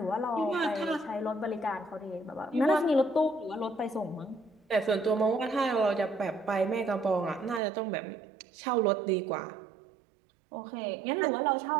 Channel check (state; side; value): drops out; left; at 7.6 s